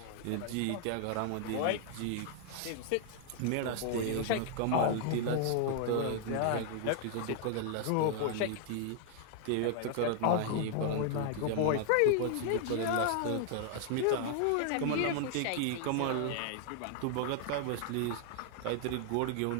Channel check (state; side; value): different; both; correlation 0.00